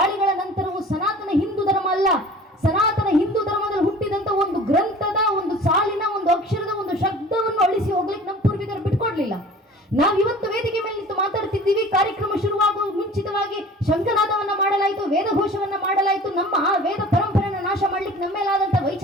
ನಂತರವೂ ಸನಾತನ ಹಿಂದೂ ಧರ್ಮ ಅಲ್ಲ, ಸನಾತನ ಹಿಂದೂ ಧರ್ಮದಲ್ಲಿ ಹುಟ್ಟಿದಂತ ಒಂದು ಗ್ರಂಥದ, ಒಂದು ಸಾಲಿನ, ಒಂದು ಅಕ್ಷರದ, ಒಂದು ಶಬ್ದವನ್ನು ಅಳಿಸಿ ಹೋಗ್ಲಿಕ್ಕೆ ನಮ್ಮ ಪೂರ್ವಿಕರು ಬಿಟ್ಕೊಡ್ಲಿಲ್ಲ. ನಾವು ಇವತ್ತು ವೇದಿಕೆ ಮೇಲೆ ನಿಂತು ಮಾತಾಡ್ತಿದ್ದೀವಿ. ಕಾರ್ಯಕ್ರಮ ಶುರುವಾಗುವ ಮುಂಚಿತವಾಗಿ ಶಂಖನಾದವನ್ನ ಮಾಡಲಾಯಿತು, ವೇದಘೋಷವನ್ನ ಮಾಡಲಾಯಿತು. ನಮ್ಮ ಆ ವೇದ ಪರಂಪರೆಯನ್ನು ನಾಶ ಮಾಡ್ಲಿಕ್ಕೆ ನಮ್ಮ ಮೇಲಾದಂತ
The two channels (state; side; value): normal; both; correlation 0.44